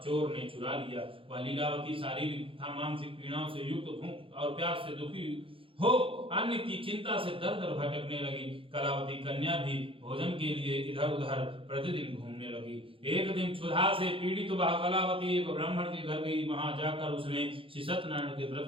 ने चुरा लिया। वह लीलावती शारीरिक तथा मानसिक पीड़ाओं से युक्त भूख और प्यास से दुखी हो अन्न की चिंता से दर दर भटकने लगी। कलावती कन्या भी भोजन के लिए इधर उधर प्रतिदिन घूमने लगी। एक दिन क्षुधा से पीड़ित वह कलावती एक ब्राह्मण के घर गई। वहां जाकर उसने श्री सत्यनारायण के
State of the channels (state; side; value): late; left; 0.26 ms